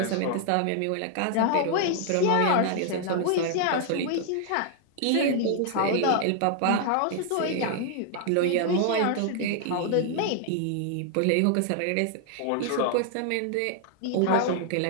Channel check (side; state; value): both; different; correlation 0.00